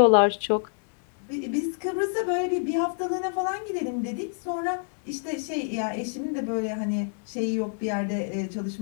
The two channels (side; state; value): right; silent; digital silence